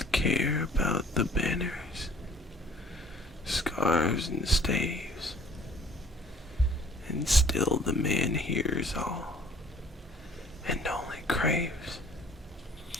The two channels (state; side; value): normal; both; correlation 0.53